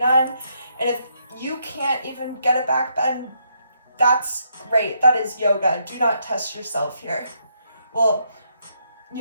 And if you can't even get a back bend, that's great, that is yoga. Do not test yourself here. Well,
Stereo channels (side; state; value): both; inverted; correlation -0.75